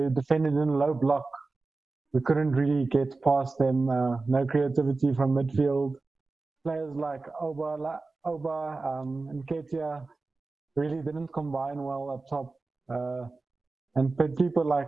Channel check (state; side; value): quieter; left; 3.7 dB